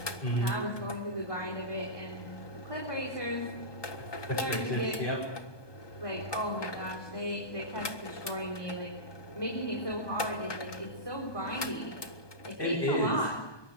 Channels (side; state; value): right; late; 1.2 ms